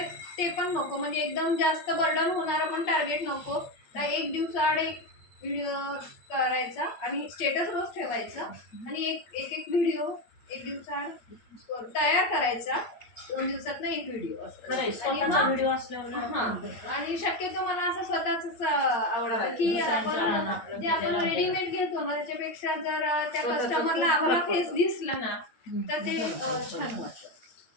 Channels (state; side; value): late; right; 8.8 ms